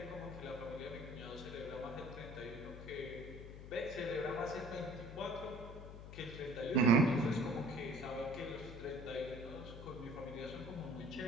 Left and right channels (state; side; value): noise; left; hum, 11 dB below the sound